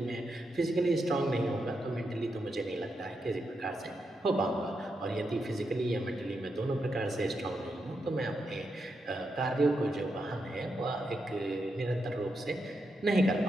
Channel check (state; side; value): normal; both; correlation 0.84